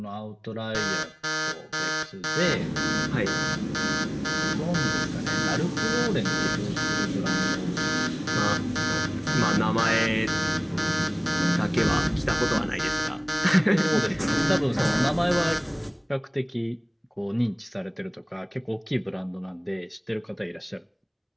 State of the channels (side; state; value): both; identical; correlation 1.00